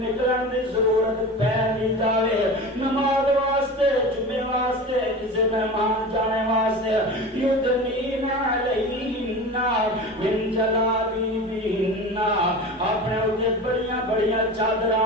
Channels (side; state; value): both; normal; correlation 0.32